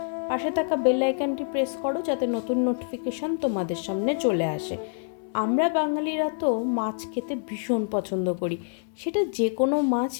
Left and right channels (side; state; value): right; silent; 58 dB below the other